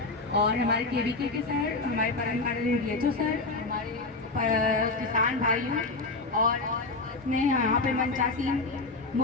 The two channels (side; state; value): right; quieter; 3.5 dB